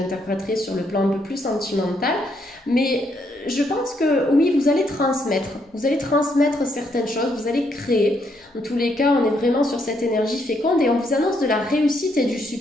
sur le plan un peu plus sentimental, mais je pense que oui, vous allez transmettre certaines choses, vous allez créer. En tous les cas, on est vraiment sur cette énergie féconde et on vous annonce de la réussite et du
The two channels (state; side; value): normal; both; correlation 0.74